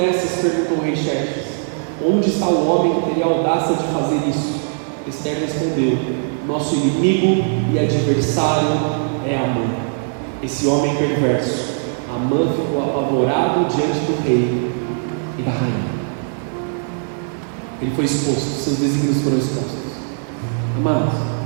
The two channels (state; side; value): silent; left; 63 dB below the other